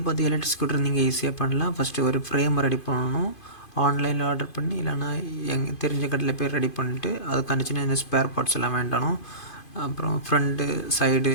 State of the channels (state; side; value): late; right; 2.5 ms